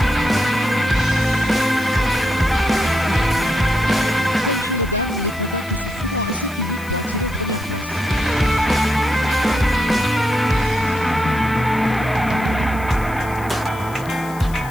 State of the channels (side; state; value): left; noise; hiss, 20 dB below the sound